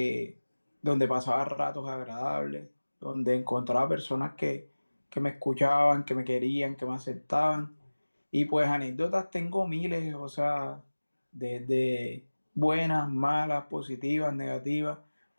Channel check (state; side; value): inverted; both; correlation -1.00